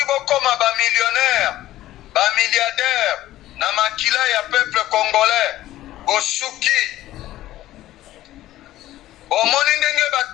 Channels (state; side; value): quieter; right; 14.7 dB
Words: bokoma ba millionnaire, ba milliardaire, na makila ya peuple congolais, bosuki. Omoni ndenge